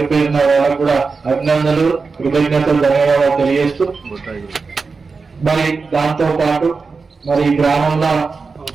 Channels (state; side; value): quieter; left; 4.6 dB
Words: పేరున వాళ్ళకు కూడా అభినందనలు, కృతజ్ఞతలు, ధన్యవాదాలు తెలియజేస్తూ మరి దాంతో పాటు మరి గ్రామంలో